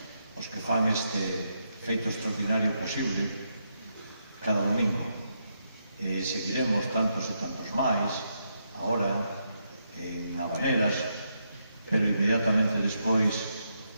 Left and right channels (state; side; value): inverted; both; correlation -0.81